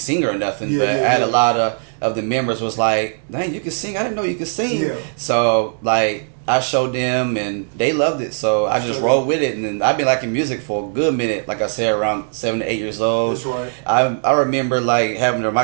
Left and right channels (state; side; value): silent; left; digital silence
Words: singer or nothing, but I had a lot of the members was like, "Dang, you can sing! I didn't know you could sing." Yeah. So like I showed them, and they loved it. So I just rolled with it, and then I've been liking music for a good minute. Like I said, around 7 to 8 years old. That's right. I remember like having the